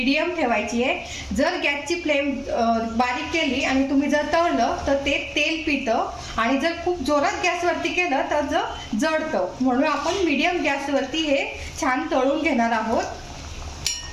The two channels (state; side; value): identical; both; correlation 1.00